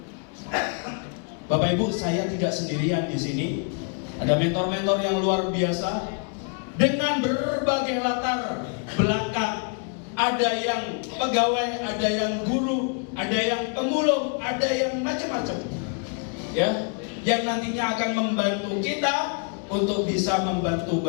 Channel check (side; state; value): right; quieter; 39.6 dB